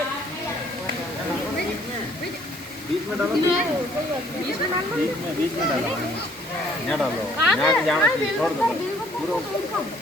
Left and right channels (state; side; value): normal; both; correlation 0.61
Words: बीच में डालो, बीच में डालो, यहाँ डालो, यहाँ जाना चाहिए, छोड़ दो,